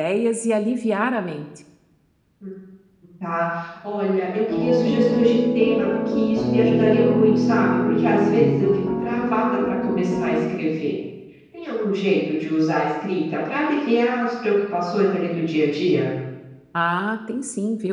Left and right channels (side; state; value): both; identical; correlation 1.00